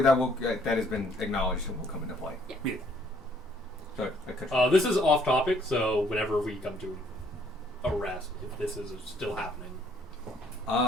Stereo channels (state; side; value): normal; both; correlation 0.64